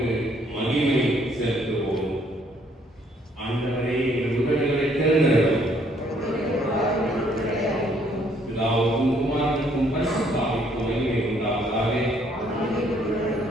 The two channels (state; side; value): normal; both; correlation 0.66